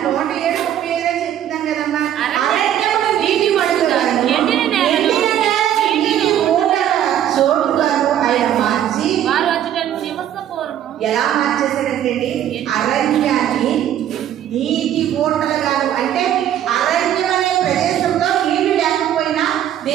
107:35 చెప్తున్నాను కదమ్మా. అరణ్యమును నీటి మడుగుగా ఎండిన నేలను చోటుగాను ఆయన మార్చి వారు అచ్చట నివసపూర్వము ఎలా మార్చేశారంటే అరణ్యాన్ని నీటి ఊటలుగాను, అంటే అరణ్యం అనే ప్రదేశంలో నీళ్లు లేకపోయినా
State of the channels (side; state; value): left; quieter; 10.9 dB